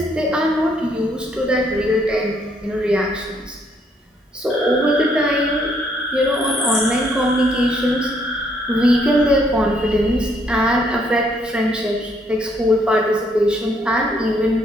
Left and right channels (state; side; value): normal; both; correlation 0.69